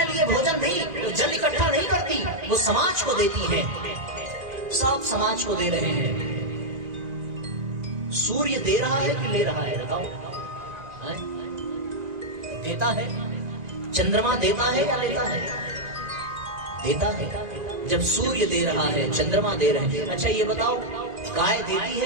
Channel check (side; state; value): left; late; 1.9 ms